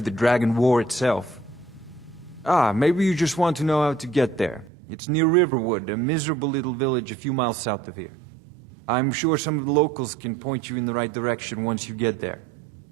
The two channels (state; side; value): drops out; left; at 4.7 s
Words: the Dragon War itself. Ah, maybe you just want to know how to get there. It's near Riverwood, a miserable little village a few miles south of here. I'm sure some of the locals can point you in the right direction once you get there.